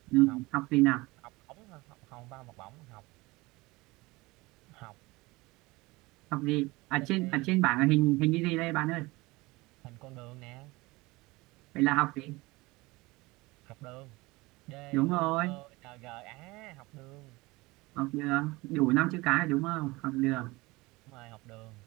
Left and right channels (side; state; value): left; quieter; 22.2 dB